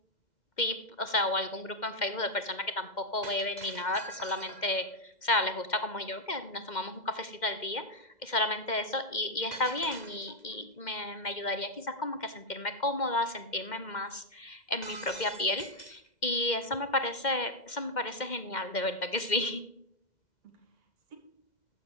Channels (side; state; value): right; late; 2.1 ms